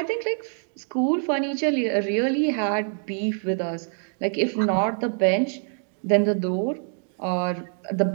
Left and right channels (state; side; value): silent; left; 60 dB below the other